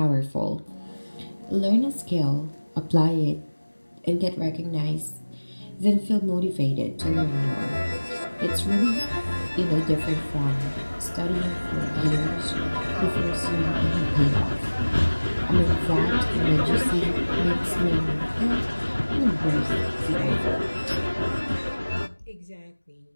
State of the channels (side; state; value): both; inverted; correlation -1.00